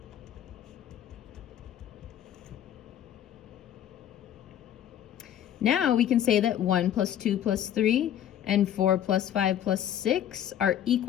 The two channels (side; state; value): right; quieter; 10.6 dB